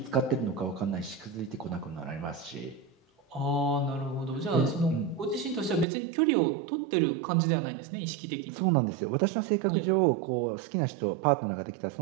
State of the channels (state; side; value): drops out; left; at 5.9 s